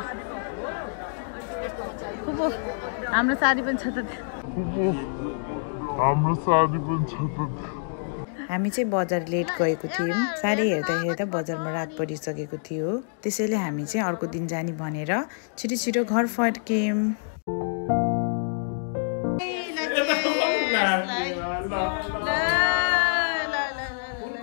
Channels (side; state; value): right; silent; digital silence